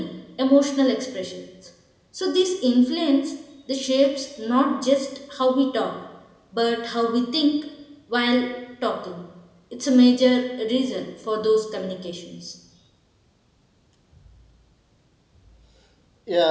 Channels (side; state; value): both; identical; correlation 1.00